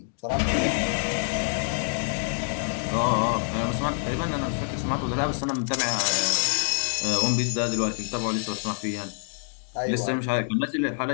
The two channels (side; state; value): right; silent; digital silence